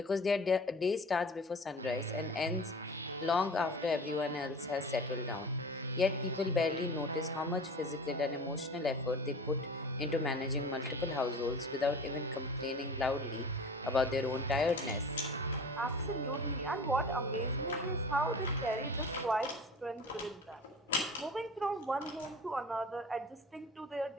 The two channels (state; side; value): normal; both; correlation 0.39